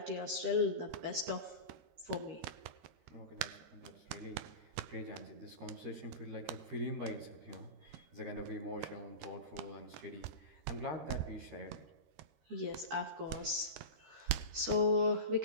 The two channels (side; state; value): left; late; 13 ms